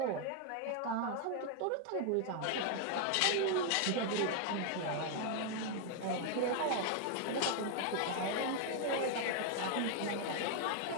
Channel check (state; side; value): different; both; correlation 0.00